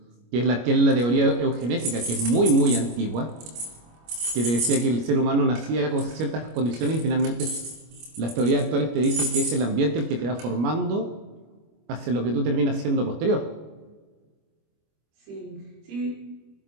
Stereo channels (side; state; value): left; late; 25 ms